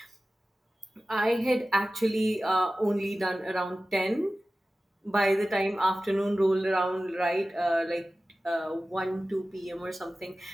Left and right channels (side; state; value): both; normal; correlation 0.96